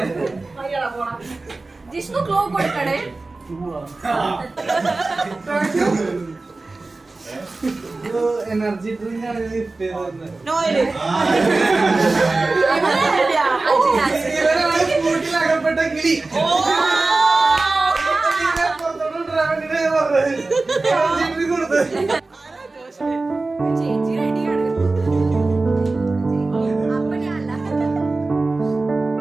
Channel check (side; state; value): left; quieter; 3.4 dB